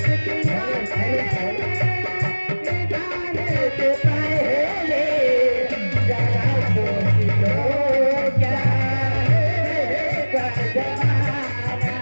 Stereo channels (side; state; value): both; inverted; correlation -1.00